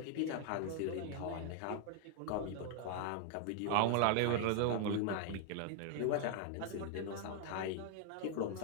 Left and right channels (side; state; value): both; different; correlation 0.00